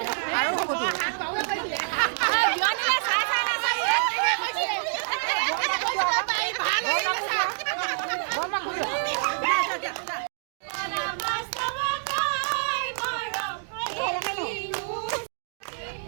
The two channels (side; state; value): left; silent; digital silence